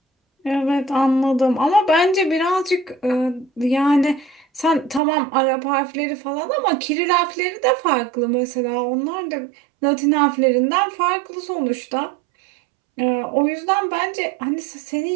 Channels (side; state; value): left; drops out; at 5.0 s